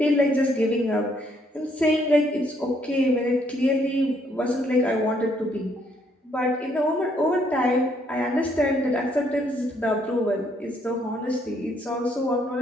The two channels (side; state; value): both; normal; correlation 0.69